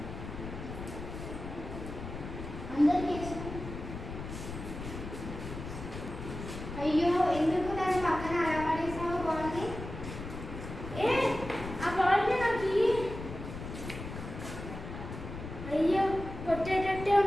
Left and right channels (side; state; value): left; noise; rumble, 9 dB below the sound